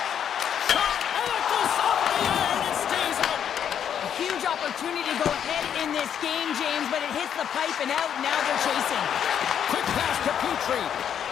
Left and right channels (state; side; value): quieter; right; 8.8 dB